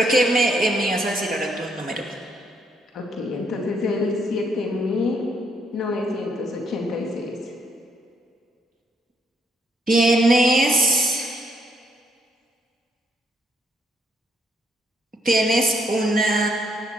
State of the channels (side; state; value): both; normal; correlation 0.72